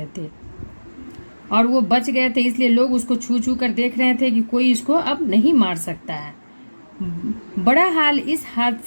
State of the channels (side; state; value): both; inverted; correlation -1.00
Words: थे और वो बच गए थे, इसलिए लोग उसको छू छू कर देख रहे थे कि कोई इसको अब नहीं मार सकता है। बड़ा हाल इस